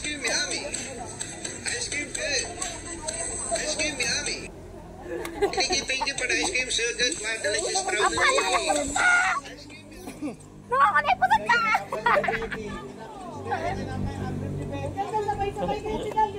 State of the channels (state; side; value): identical; both; correlation 1.00